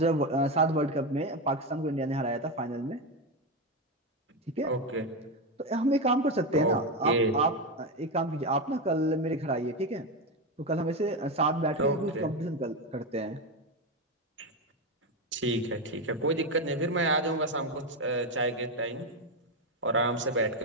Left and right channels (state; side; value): normal; both; correlation 0.12